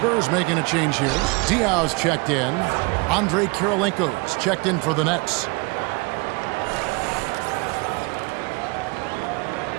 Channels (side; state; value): left; quieter; 28.7 dB